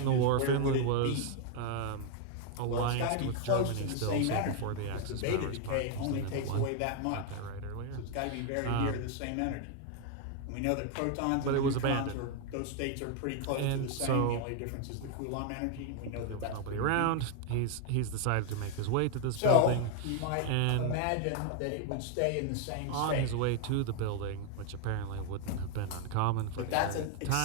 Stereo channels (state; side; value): different; both; correlation 0.00